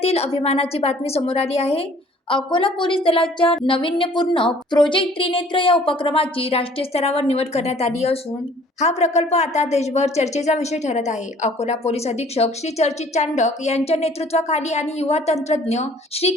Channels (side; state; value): both; normal; correlation 0.54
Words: अभिमानाची बातमी समोर आली आहे. अकोला पोलीस दलाच्या नाविन्यपूर्ण प्रोजेक्ट त्रिनेत्र या उपक्रमाची राष्ट्रीय स्तरावर निवड करण्यात आली असून हा प्रकल्प आता देशभर चर्चेचा विषय ठरत आहे. अकोला पोलीस अधीक्षक श्री चर्चित चांडक यांच्या नेतृत्वाखाली आणि युवा तंत्रज्ञ श्री